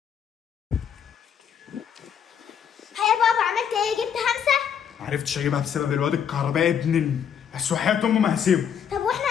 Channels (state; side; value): quieter; right; 8.2 dB